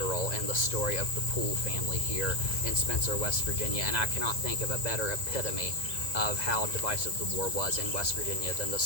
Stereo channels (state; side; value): late; right; 1.9 ms